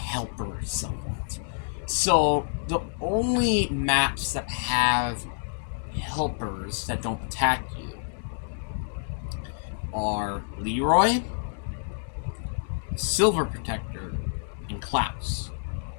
somewhat. So the only maps that have helpers that don't attack you are Leroy, Silver Protector, and Klaus.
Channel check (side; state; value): right; silent; 59 dB below the other